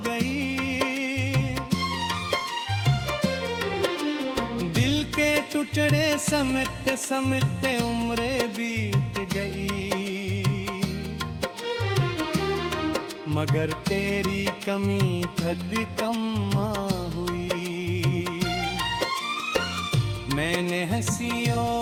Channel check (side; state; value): both; identical; correlation 1.00